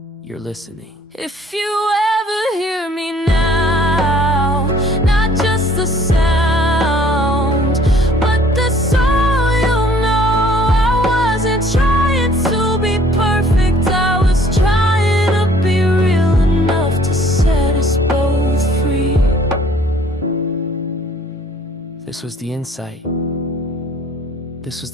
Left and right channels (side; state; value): both; normal; correlation 0.57